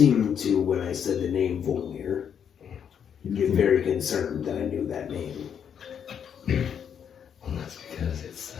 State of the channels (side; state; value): right; quieter; 8.1 dB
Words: to, when I said the name Volmir, get very concerned that I knew that name. Well, that's because it's